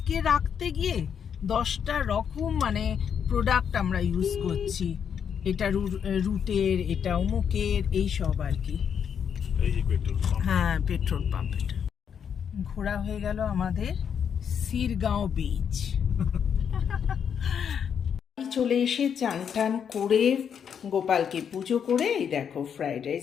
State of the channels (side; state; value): right; quieter; 7.7 dB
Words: রাখতে গিয়ে 10টা রকম মানে প্রোডাক্ট আমরা ইউজ করছি, এটা রুটের, এটা অমুকের, এই সব আর কি। হ্যাঁ, পেট্রোল পাম্প। এটা ঘোরা হয়ে গেল আমাদের সিরগাঁও বিচ। চলে এসে চান টান করে গোপালকে পুজো করে এই দেখো ফ্রাইড